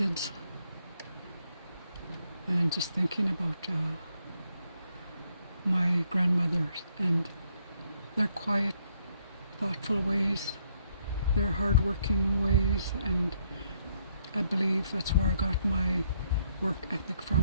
And just thinking about my grandmothers and their quiet, thoughtful ways, their hardworking ways, and I believe that's where I got my work ethic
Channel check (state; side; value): inverted; both; correlation -0.72